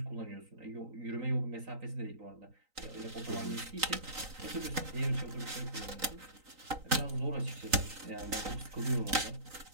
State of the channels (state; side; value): late; left; 3.9 ms